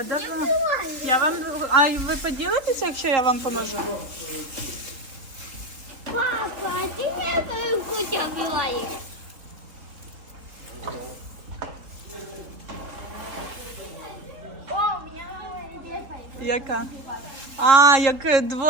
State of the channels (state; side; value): late; left; 4.0 ms